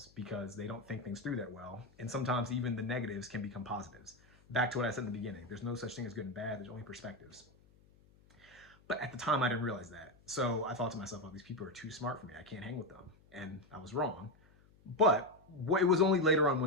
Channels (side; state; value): left; noise; hum, 28 dB below the sound